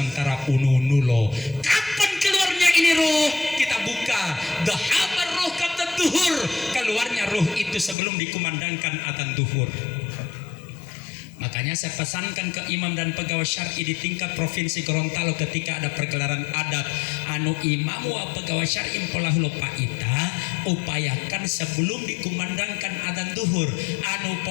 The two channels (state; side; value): drops out; right; at 8.0 s